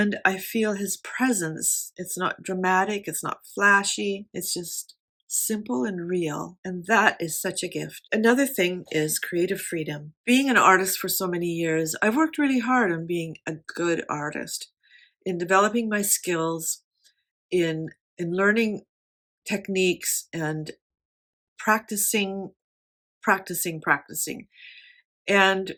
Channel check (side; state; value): both; identical; correlation 1.00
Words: I feel His presence. It's not dramatic, it's not flashy, it's just simple and real. And that is such a gift. Another thing is creative freedom. Being an artist for so many years, I've worked really hard on being a good artist, in developing my skills, in learning techniques and practicing. And